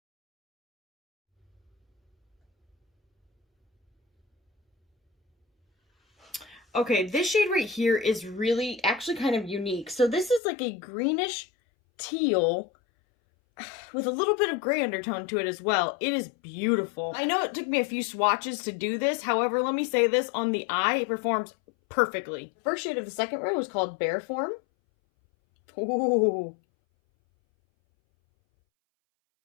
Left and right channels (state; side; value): drops out; right; at 10.4 s